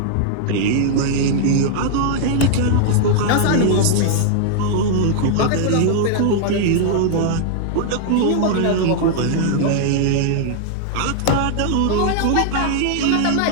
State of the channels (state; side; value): different; both; correlation -0.01